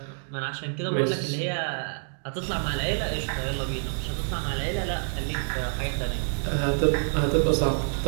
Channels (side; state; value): left; silent; digital silence